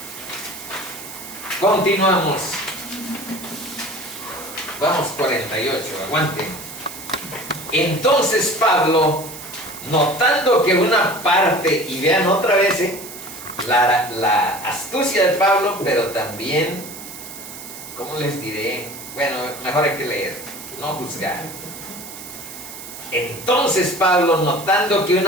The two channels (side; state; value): right; noise; hiss, 13 dB below the sound